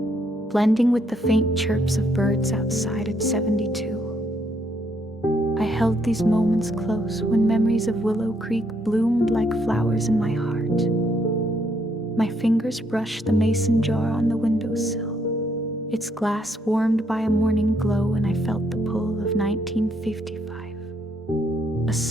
blending with the faint chirps of birds outside at 72. I held these moments close when memories of Willow Creek bloomed like flowers in my heart. My fingers brushed the mason jar on the windowsill, its glass warmed by a morning glow, and I felt the pull of 1955. A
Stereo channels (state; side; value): normal; both; correlation 0.72